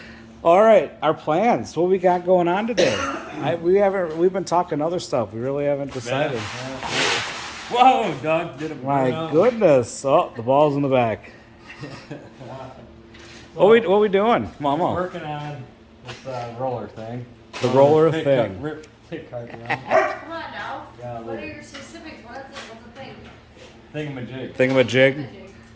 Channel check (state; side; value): identical; both; correlation 1.00